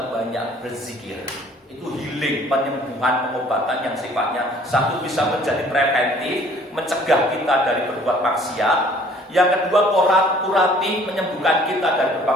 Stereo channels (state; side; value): normal; both; correlation 0.55